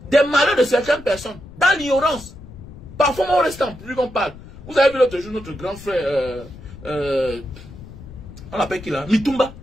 des malheurs de certaines personnes. Dans l'ignorance. Parfois, on reste en public, on parle. Vous avez vu l'autre jour notre grand frère, on l'appelle qui là? Mitumba.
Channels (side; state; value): left; noise; rumble, 17 dB below the sound